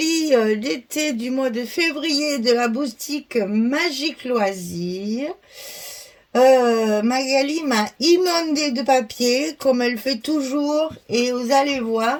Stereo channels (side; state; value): both; identical; correlation 1.00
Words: d'été du mois de février de la boutique Magique Loisirs. Magali m'a inondé de papier, comme elle fait toujours, et vous allez voir,